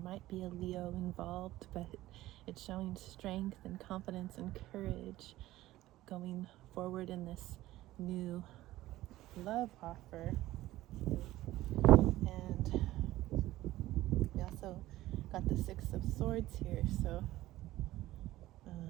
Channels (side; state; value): left; quieter; 16.1 dB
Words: might be a Leo involved, but it's showing strength and confidence and courage going forward in this new love offer. And we also got the Six of Swords here, so